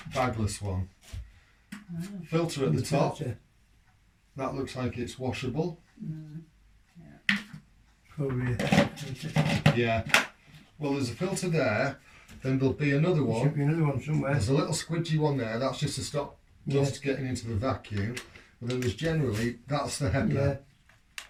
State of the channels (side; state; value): both; identical; correlation 1.00